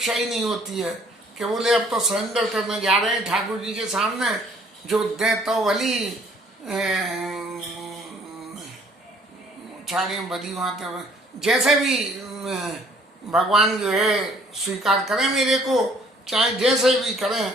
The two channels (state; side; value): normal; both; correlation 0.59